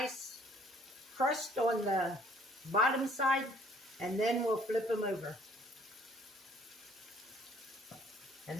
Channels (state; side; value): normal; both; correlation 0.59